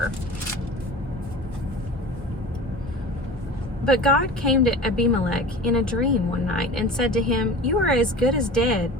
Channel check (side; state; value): both; normal; correlation 0.36